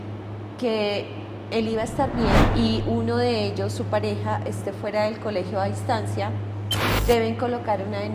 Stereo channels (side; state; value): both; identical; correlation 1.00